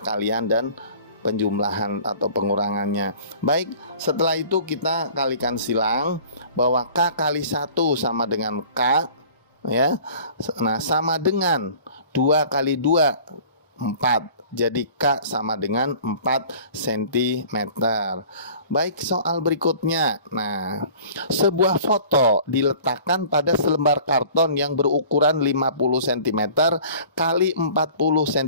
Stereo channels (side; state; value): both; inverted; correlation -0.47